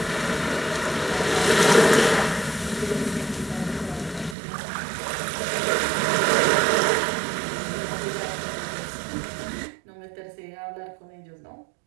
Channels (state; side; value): drops out; left; at 4.4 s